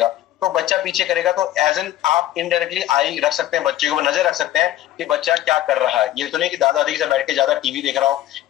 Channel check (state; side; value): quieter; right; 13.7 dB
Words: तो बच्चा पीछे करेगा, तो एज एन आप इनडायरेक्टली आई रख सकते हैं, बच्चे को नजर रख सकते हैं कि बच्चा क्या कर रहा है। ये तो नहीं कि दादा दादी से बैठ के ज्यादा टीवी देख रहा हो